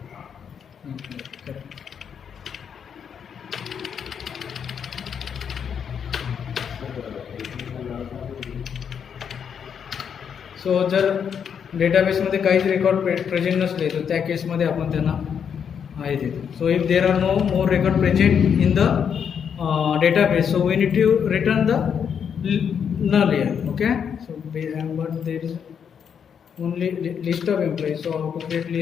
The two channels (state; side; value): quieter; right; 7.5 dB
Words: employee. Correct. सो जर डेटाबेसमध्ये काहीच record present नसले तर त्या केसमध्ये आपण त्यांना आहे देतो. So if there are no more record present in the database, so we need to return the null here. Okay, so but there is only list of employees. So how to create